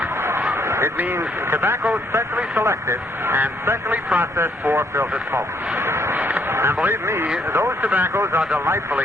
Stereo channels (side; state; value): both; normal; correlation 0.69